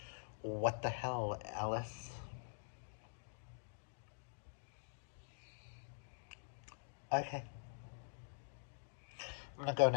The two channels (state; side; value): silent; right; digital silence